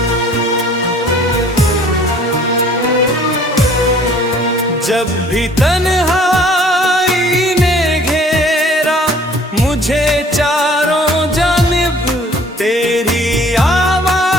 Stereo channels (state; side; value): normal; both; correlation 0.54